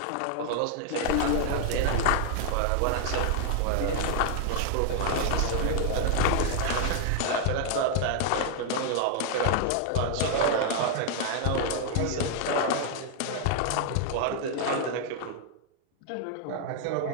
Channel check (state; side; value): different; both; correlation 0.00